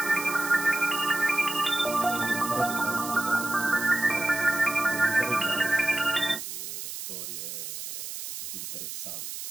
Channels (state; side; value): noise; right; hiss, 8 dB below the sound